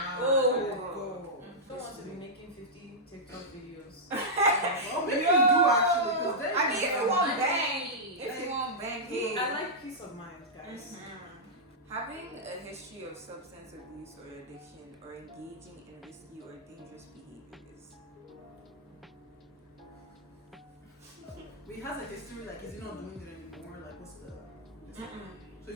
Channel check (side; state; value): both; normal; correlation -0.09